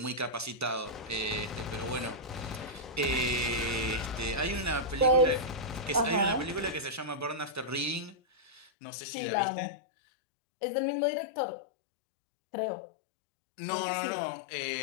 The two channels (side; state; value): right; drops out; at 8.7 s